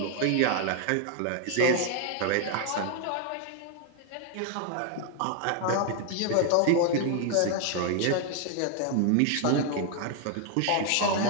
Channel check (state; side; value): different; both; correlation 0.00